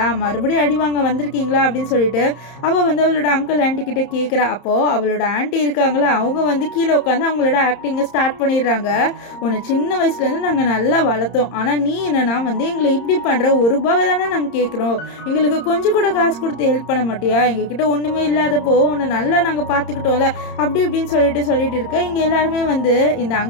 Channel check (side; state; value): right; late; 30 ms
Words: மறுபடியும் அடி வாங்க வந்திருக்கீங்களா அப்படின்னு சொல்லிட்டு அவள் வந்து அவளோட அங்கிள் ஆண்டி கிட்ட கேட்குறா. அப்போது அவளோட ஆண்டி இருக்காங்களா, அவங்க வந்து கீழே உட்காந்து அவங்களோட ஆக்டிங்கை ஸ்டார்ட் பண்ணிடுறாங்க. உன்னை சின்ன வயசுலேருந்து நாங்கள் நல்லா வளர்த்தோம், ஆனால் நீ என்னன்னா வந்து எங்களை இப்படி பண்ணுற, ₹1 தானே நாங்கள் கேட்குறோம், எங்களுக்கு கொஞ்சம் கூட காசு கொடுத்து ஹெல்ப் பண்ண மாட்டியா, எங்ககிட்ட ஒன்றுமே இல்லாதப்போ உன்னை நல்லா நாங்கள் பார்த்துக்கிட்டோம்ல அப்படி இப்படின்னு சொல்லிட்டு இருக்க. இங்கே எல்லாருமே வந்து இந்த